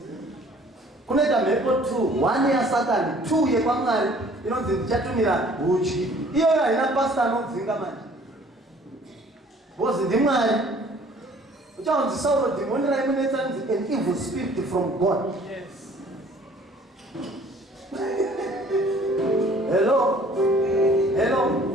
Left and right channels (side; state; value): both; normal; correlation 0.54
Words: kunoita mhepo 2 1 yasatani 2 yekwamwari inonzi ndichatumira hudyi iyoyo haina pasta anodzinga manje bozi ndimwari uchaunzi Sauro demoni raimunetsa nzi an evil spirit from God. Hello